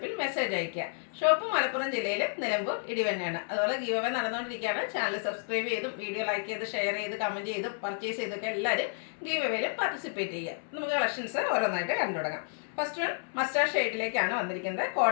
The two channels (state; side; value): silent; right; 57 dB below the other